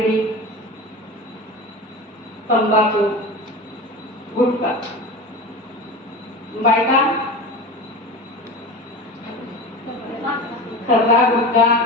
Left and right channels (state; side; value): normal; both; correlation 0.30